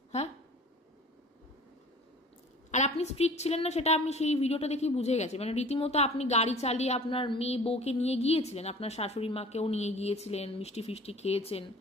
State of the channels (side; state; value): both; normal; correlation 0.45